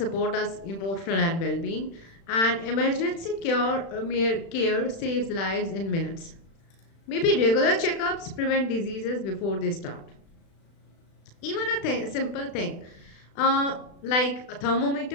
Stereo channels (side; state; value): right; late; 36 ms